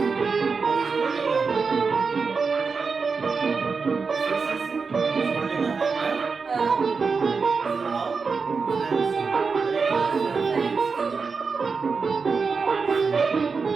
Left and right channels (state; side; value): quieter; left; 4.9 dB